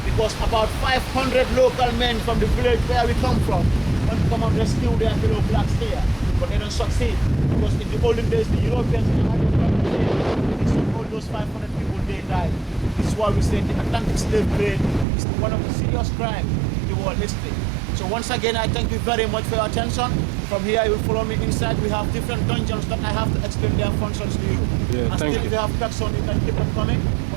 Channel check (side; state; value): left; drops out; at 15.1 s